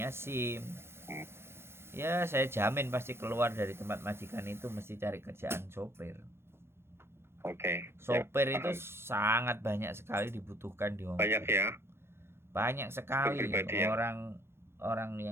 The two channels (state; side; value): late; left; 0.12 ms